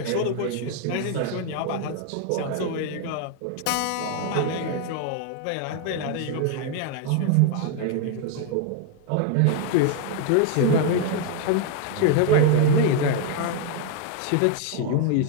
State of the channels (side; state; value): both; different; correlation 0.01